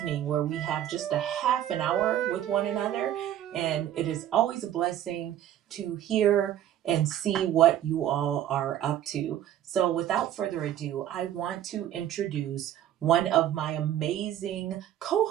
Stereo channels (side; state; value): left; quieter; 11.5 dB